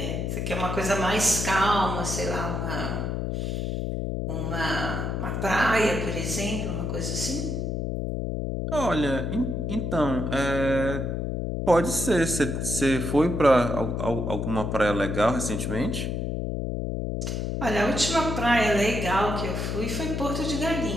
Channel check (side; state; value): left; noise; hum, 2 dB below the sound